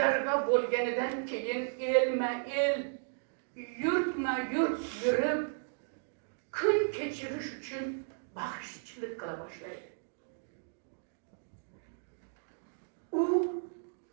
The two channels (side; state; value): left; silent; digital silence